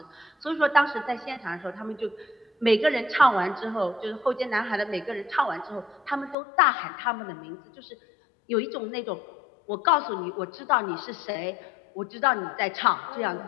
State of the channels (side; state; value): right; drops out; at 6.4 s